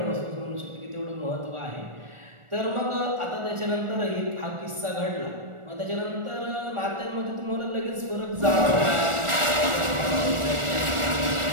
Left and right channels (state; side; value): late; left; 1.4 ms